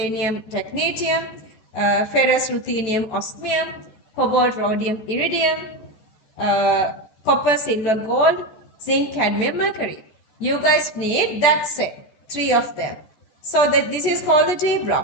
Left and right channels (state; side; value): late; right; 14 ms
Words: technetium, ferrous, ruthenium, osmium, cobalt, rhodium, iridium, copper, silver, gold, zinc, cadmium, mercury. You guys need that set, 3 of them. So that this is called the D